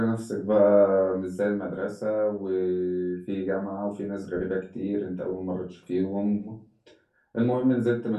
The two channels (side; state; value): both; identical; correlation 1.00